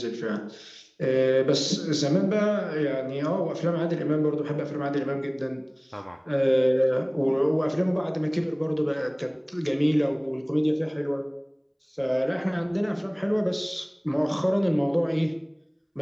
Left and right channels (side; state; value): both; identical; correlation 1.00